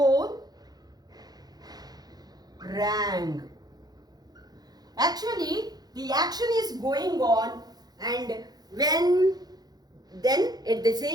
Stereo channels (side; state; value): left; late; 0.19 ms